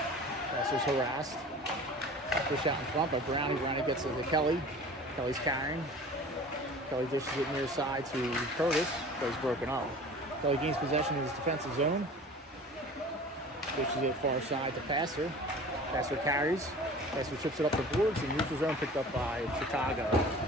Passer's harassed. Push out in front by Brownie. Brownie gets it to Kelly. Kelly's carrying. Kelly dishes it near side to Curtis. Plays broken up. Kelly gains possession in his defensive zone. Dishes it far side to Passer. Passer carries. Passer chips it up the boards. And neutral zone picked up by Chicago.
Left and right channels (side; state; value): both; normal; correlation 0.42